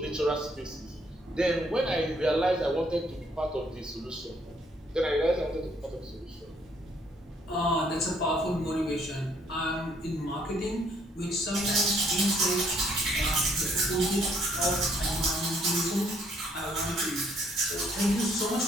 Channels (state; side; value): normal; both; correlation 0.67